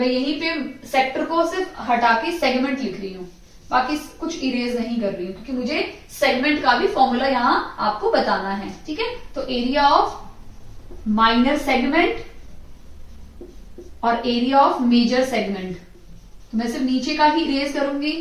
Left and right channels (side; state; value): both; identical; correlation 1.00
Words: यहीं पे सेक्टर को सिर्फ हटा के सेगमेंट लिख रही हूं, बाकी कुछ इरेज नहीं कर रही हूं क्योंकि मुझे सेगमेंट का भी फॉर्मूला यहां आपको बताना है, ठीक है। तो एरिया ऑफ माइनर सेगमेंट और एरिया ऑफ मेजर सेगमेंट, तो मैं सिर्फ नीचे का ही इरेज करूंगी,